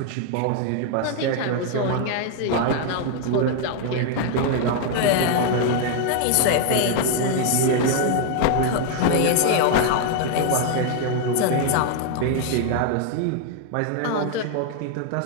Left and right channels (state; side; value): different; both; correlation 0.00